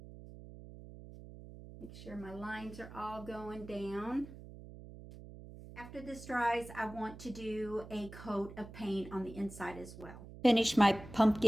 Make sure my lines are all going down. After this dries, I want to do a coat of paint on the inside as well. Finish my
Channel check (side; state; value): right; noise; hum, 15 dB below the sound